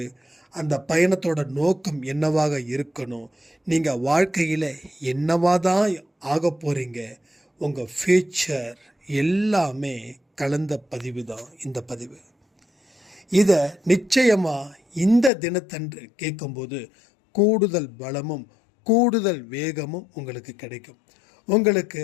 அந்த பயணத்தோட நோக்கம் என்னவாக இருக்கணும், நீங்கள் வாழ்க்கையில் என்னவாக தான் ஆக போகிறீங்க, உங்கள் ஃப்யூச்சர் எல்லாமே கலந்த பதிவு தான் இந்த பதிவு. இதை நிச்சயமாக இந்த தினத்தன்று கேட்கும்போது கூடுதல் பலமும் கூடுதல் வேகமும் உங்களுக்கு கிடைக்கும். உங்களுக்கு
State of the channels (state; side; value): drops out; right; at 15.3 s